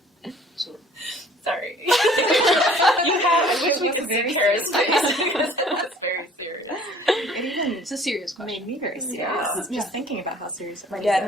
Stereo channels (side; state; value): both; normal; correlation 0.52